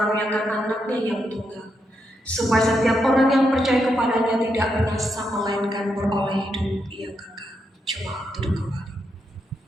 anaknya yang tunggal, supaya setiap orang yang percaya kepadanya tidak binasa, melainkan beroleh hidup yang kekal. Coba duduk kembali.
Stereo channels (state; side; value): normal; both; correlation 0.82